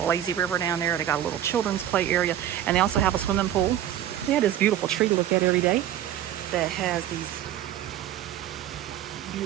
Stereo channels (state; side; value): quieter; left; 11.4 dB